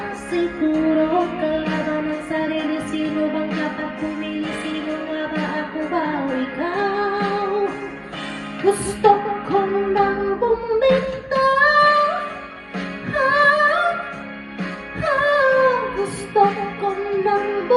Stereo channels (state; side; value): identical; both; correlation 1.00